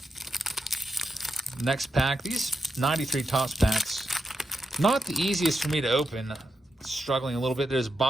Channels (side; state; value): both; normal; correlation 0.86